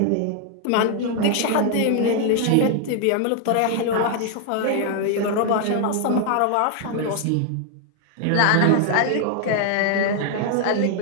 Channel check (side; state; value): both; different; correlation 0.00